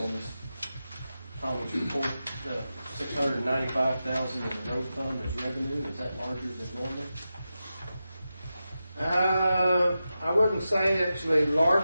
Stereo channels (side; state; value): both; inverted; correlation -0.91